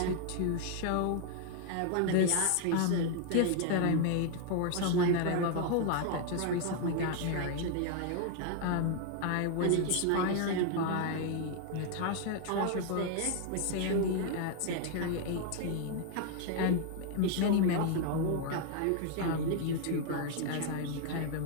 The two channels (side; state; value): both; different; correlation 0.00